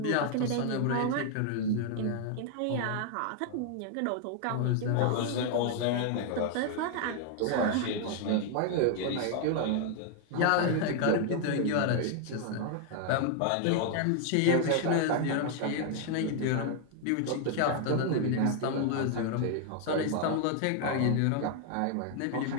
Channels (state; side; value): different; both; correlation 0.00